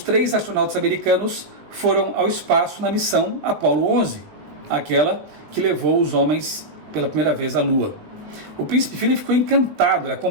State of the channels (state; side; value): late; left; 19 ms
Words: astronautas americanos foram ao espaço na missão Apollo 11, aquela que levou os homens pela primeira vez à Lua. O príncipe Philip ficou encantado, ele